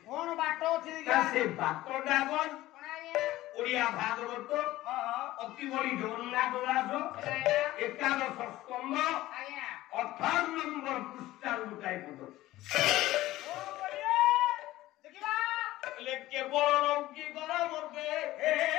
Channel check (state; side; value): quieter; right; 16.4 dB